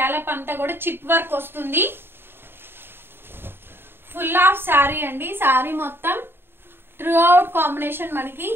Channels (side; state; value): left; late; 0.11 ms